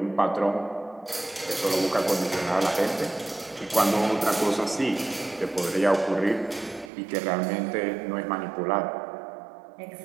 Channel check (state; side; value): drops out; left; at 6.9 s